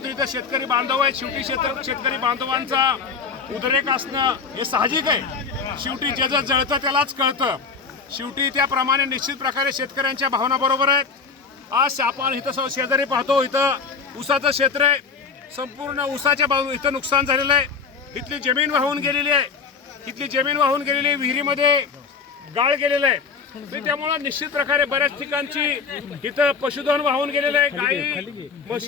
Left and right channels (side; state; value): right; quieter; 5.3 dB